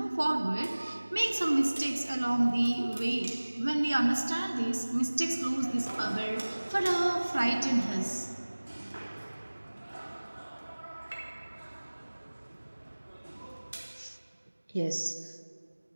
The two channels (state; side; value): inverted; both; correlation -1.00